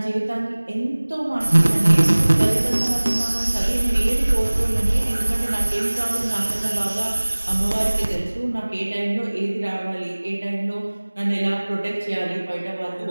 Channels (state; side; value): inverted; both; correlation -1.00